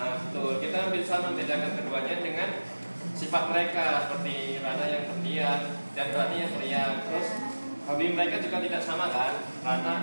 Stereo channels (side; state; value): both; inverted; correlation -1.00